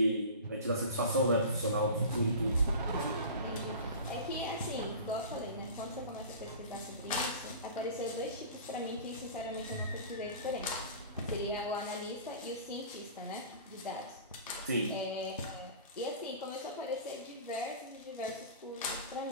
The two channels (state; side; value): inverted; both; correlation -0.37